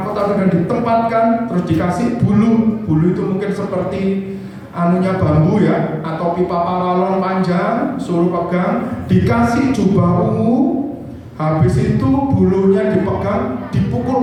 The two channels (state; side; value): identical; both; correlation 1.00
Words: dan ditempatkan, terus dikasih bulu itu mungkin seperti bambu ya, atau pipa paralon panjang, suruh pegang, dikasih jubah ungu, habis itu bulunya dipegang,